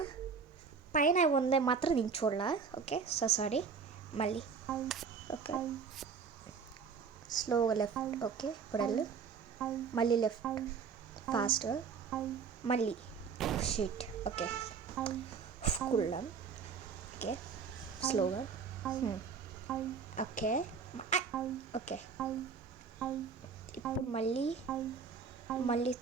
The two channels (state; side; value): quieter; left; 5.9 dB